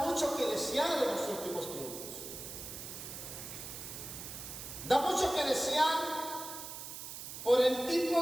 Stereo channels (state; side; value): noise; right; hiss, 9 dB below the sound